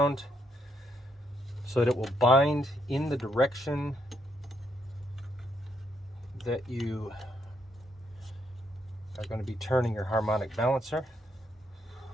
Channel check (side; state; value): both; normal; correlation 0.76